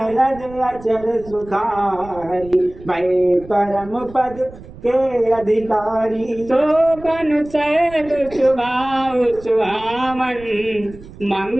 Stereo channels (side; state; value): right; noise; rumble, 18 dB below the sound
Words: रज अचल सुखारी भय परम पद के अधिकारी तो बनु सैल सुभाव सुहावन